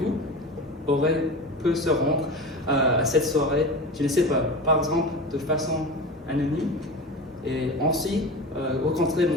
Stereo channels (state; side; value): normal; both; correlation 0.30